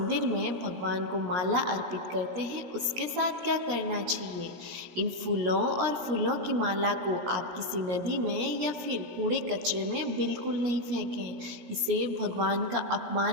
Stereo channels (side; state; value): left; late; 17 ms